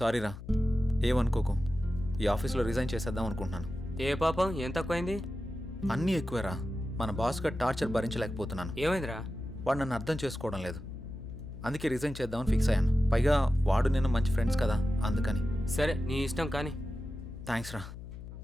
రా, ఏమనుకోకు. ఈ ఆఫీస్లో రిజైన్ చేసేద్దాం అనుకుంటున్నాను. ఏ పాపం, ఏం తక్కువైంది? అన్నీ ఎక్కువేరా. మన బాస్గా టార్చర్ భరించలేకపోతున్నాను. ఏమైందిరా? వాడు నన్ను అర్థం చేసుకోవడం లేదు. అందుకే రిజైన్ చేద్దామని ఫిక్స్ అయ్యాను. పైగా వాడు నేను మంచి ఫ్రెండ్స్ కదా, అందుకని. సరే, నీ ఇష్టం కానీ. థ్యాంక్స్ రా.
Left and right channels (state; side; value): noise; left; hum, 12 dB below the sound